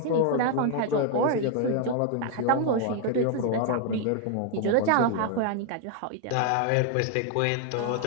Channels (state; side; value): different; both; correlation 0.00